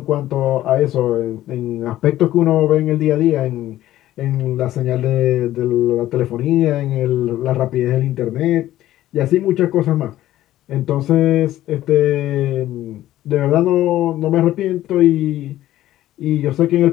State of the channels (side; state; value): right; quieter; 14.0 dB